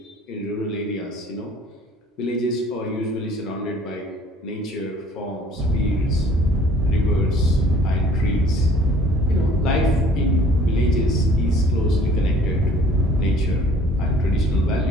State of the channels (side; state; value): both; normal; correlation 0.54